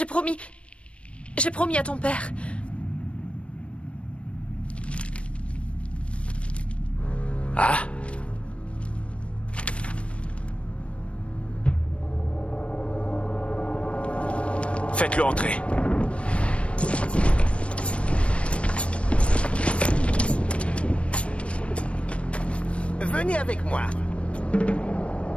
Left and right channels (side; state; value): right; late; 0.061 ms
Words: promis à ton père. Ah? Faites-le entrer. Venez avec moi.